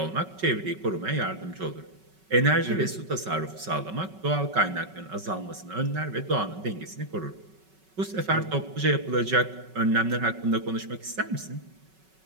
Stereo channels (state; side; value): late; left; 5.3 ms